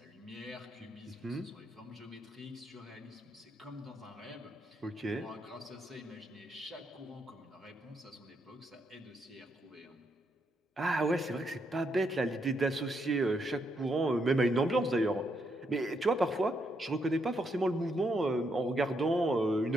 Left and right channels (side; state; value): both; normal; correlation 0.77